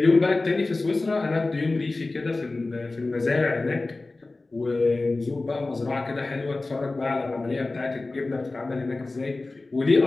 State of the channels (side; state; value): right; quieter; 3.2 dB